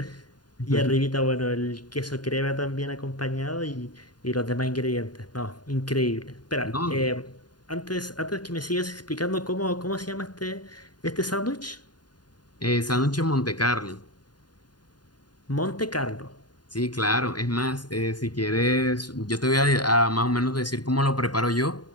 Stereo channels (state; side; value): late; right; 0.70 ms